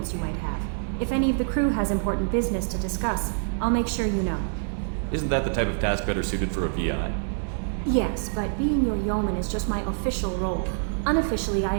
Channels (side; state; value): left; silent; digital silence